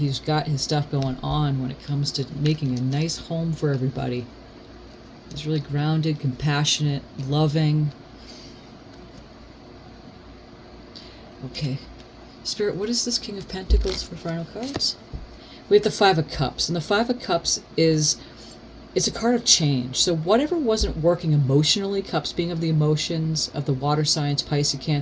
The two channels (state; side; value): identical; both; correlation 1.00